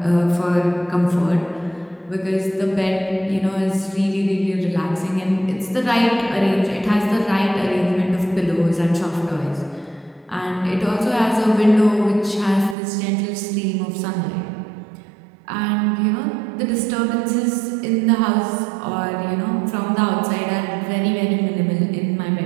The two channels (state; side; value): drops out; left; at 12.8 s